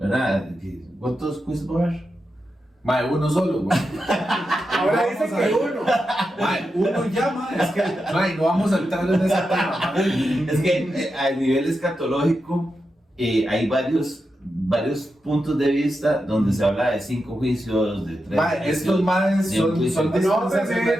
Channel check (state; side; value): normal; both; correlation 0.88